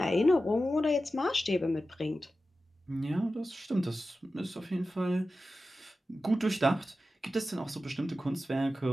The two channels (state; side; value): normal; both; correlation 0.93